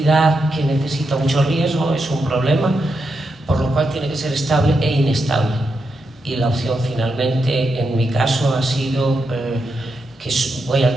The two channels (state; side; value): normal; both; correlation 0.84